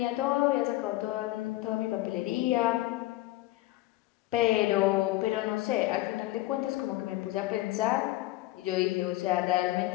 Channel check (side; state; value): right; quieter; 17.5 dB